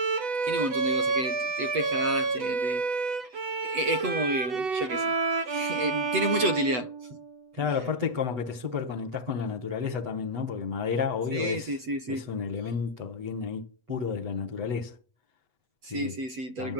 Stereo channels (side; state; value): left; late; 8.0 ms